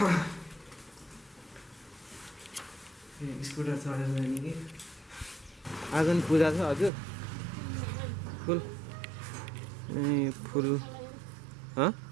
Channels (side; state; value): left; drops out; at 6.9 s